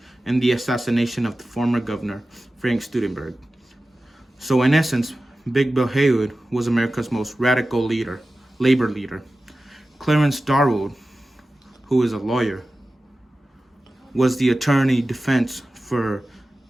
and the assassination of the former governor, Frank Studenberg. So in essence, Big Bill Haywood was America's most radical labor leader. Clarence Darwood, who is a lawyer, was the attorney defense for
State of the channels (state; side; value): normal; both; correlation 0.95